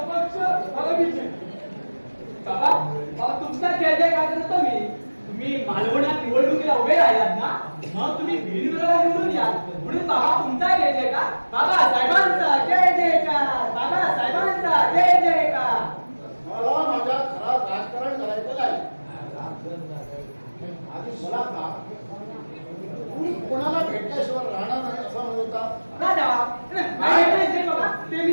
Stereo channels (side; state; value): both; inverted; correlation -1.00